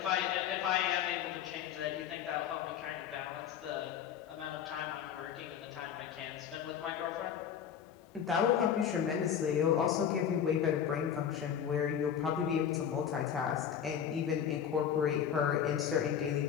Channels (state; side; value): quieter; right; 8.6 dB